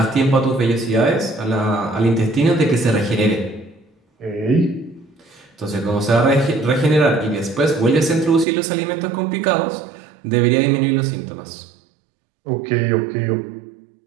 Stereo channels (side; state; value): left; drops out; at 8.5 s